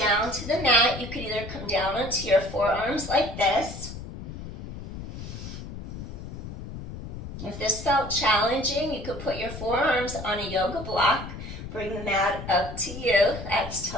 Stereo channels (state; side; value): noise; left; rumble, 10 dB below the sound